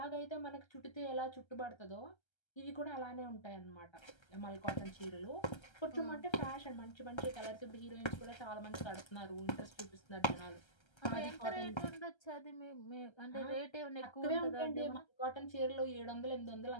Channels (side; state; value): right; late; 1.3 ms